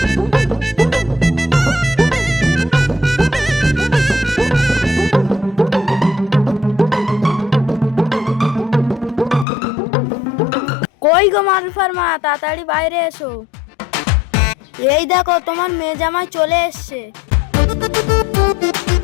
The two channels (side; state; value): right; drops out; at 9.5 s